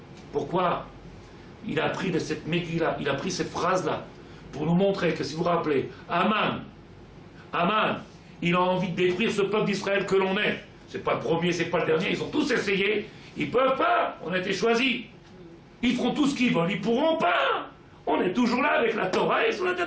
Pourquoi? Il a appris de cette Megillah, il a pris cette phrase-là, pour nous montrer que, si vous vous rappelez, Aman, il a envie de détruire ce peuple d'Israël que l'on est. C'est pas le premier, c'est pas le dernier, ils ont tous essayé. Ils peuvent pas, on a été choisis. Ils feront tout ce qu'ils veulent, ils pourront pas. On est toujours là avec la Torah et sur la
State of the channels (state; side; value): identical; both; correlation 1.00